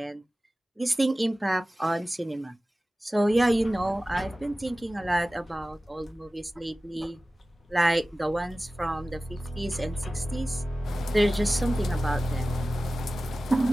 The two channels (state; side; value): normal; both; correlation 0.96